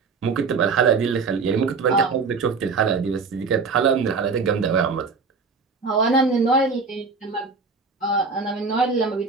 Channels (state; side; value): quieter; left; 4.7 dB